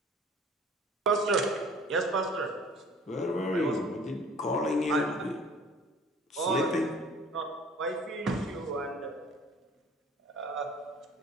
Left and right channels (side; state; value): both; normal; correlation 0.50